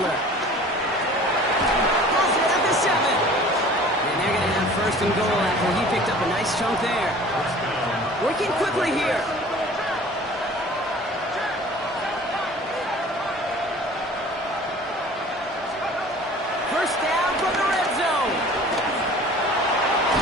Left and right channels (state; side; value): normal; both; correlation 0.46